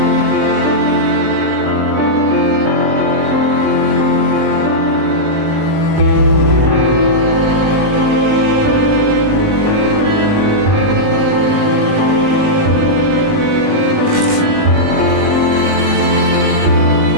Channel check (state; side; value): late; left; 20 ms